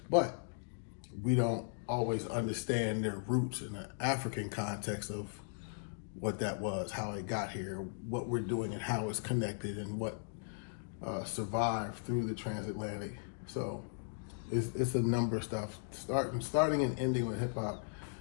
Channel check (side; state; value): right; silent; digital silence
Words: but we don't always understand their roots in the African context of what that was, how it got here, what we're doing and how it's connected and what survived through the transatlantic. So it's a number of stuff. Starting and ending with hip hop,